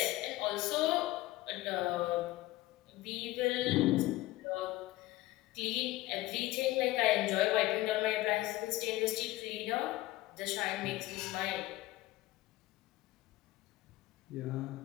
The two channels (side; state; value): right; quieter; 17.7 dB